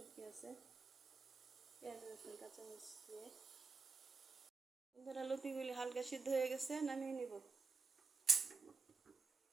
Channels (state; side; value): quieter; left; 4.6 dB